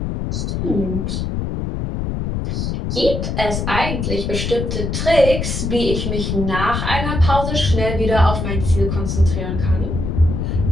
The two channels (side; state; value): left; noise; rumble, 2 dB below the sound